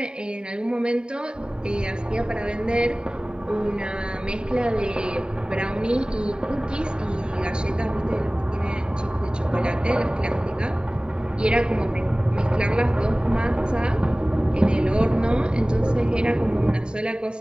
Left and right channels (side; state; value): left; late; 0.048 ms